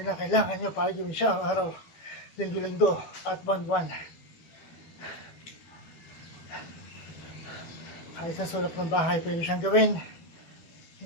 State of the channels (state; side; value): late; right; 12 ms